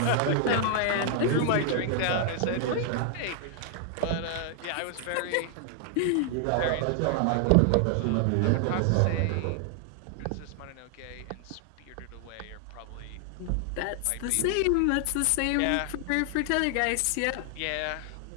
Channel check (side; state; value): both; different; correlation 0.00